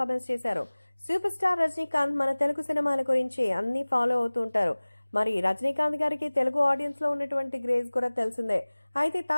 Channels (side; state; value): both; inverted; correlation -1.00